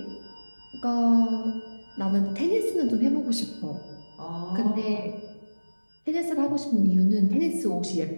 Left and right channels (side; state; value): both; inverted; correlation -1.00